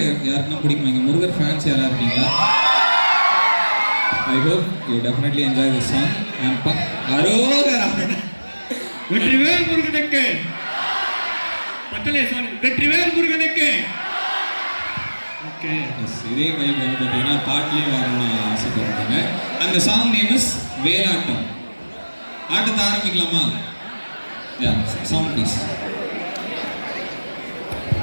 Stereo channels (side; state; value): both; inverted; correlation -1.00